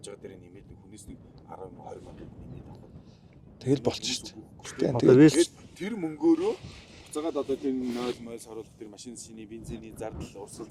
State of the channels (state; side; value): identical; both; correlation 1.00